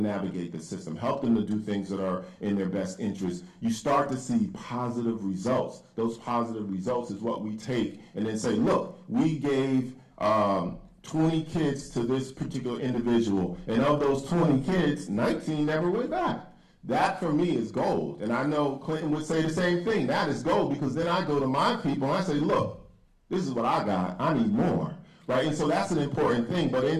the system, help them to do things that are in their best interest. You start to see positive results. Those positive results is what we take and then say, look, we gave 20 kids to this particular individual, and of those 20 kids, 19 never went back. That for me is gold. And I know Clinton would say the same thing. That is gold, because then I go to my people and I say, look, this is what I got. I need more. Right, and so that's an important thing. But in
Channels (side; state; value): both; identical; correlation 1.00